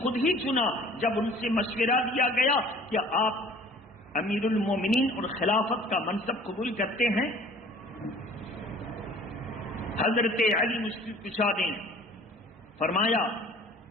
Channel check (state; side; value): normal; both; correlation 0.50